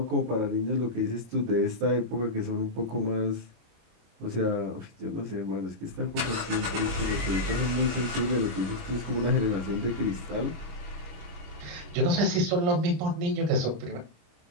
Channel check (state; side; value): late; left; 25 ms